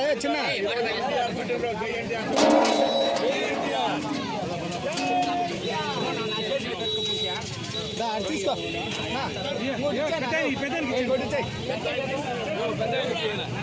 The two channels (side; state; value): both; identical; correlation 1.00